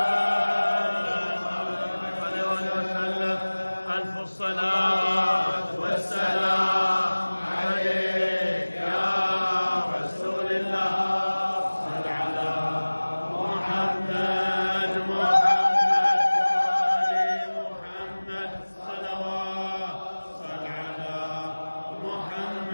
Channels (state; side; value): inverted; both; correlation -1.00